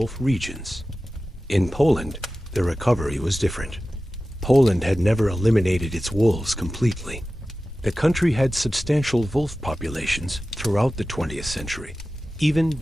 regions. In Poland, the recovery was different. Poland had never eliminated its wolves completely. The country had substantial wolf populations throughout the 20th century, even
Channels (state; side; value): normal; both; correlation 0.95